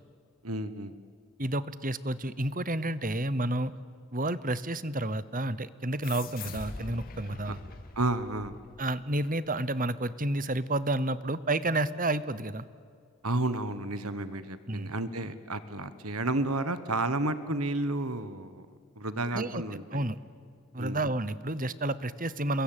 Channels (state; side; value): normal; both; correlation 0.46